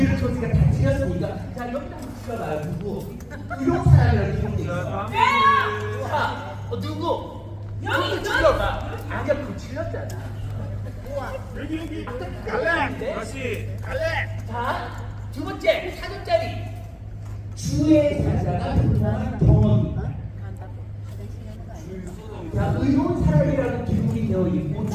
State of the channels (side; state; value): both; identical; correlation 1.00